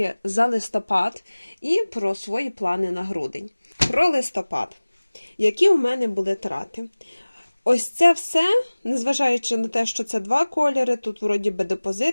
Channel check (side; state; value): both; inverted; correlation -1.00